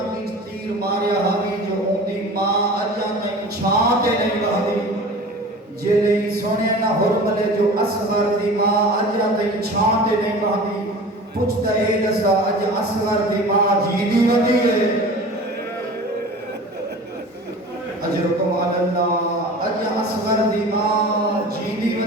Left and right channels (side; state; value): both; normal; correlation 0.38